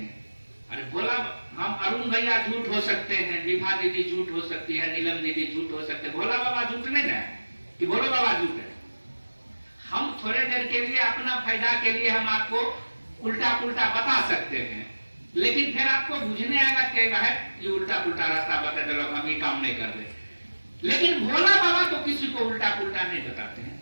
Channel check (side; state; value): both; inverted; correlation -1.00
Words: अरे बोला हम अरुण भैया झूठ हो सकते हैं, विभा दीदी झूठ हो सकती है, नीलम दीदी झूठ हो सकते हैं, भोला बाबा झूठ नहीं है कि भोला बाबा झूठ है। हम थोड़े देर के लिए अपना फायदा के लिए हम आपको उल्टा पुल्टा बता सकते हैं, लेकिन फिर आपको बुझने आएगा क्या है ये उल्टा पुल्टा रास्ता बता दे, हम ये काम नहीं कर रहे। लेकिन भोला बाबा तो किसी को उल्टा पुल्टा नहीं बताते हैं।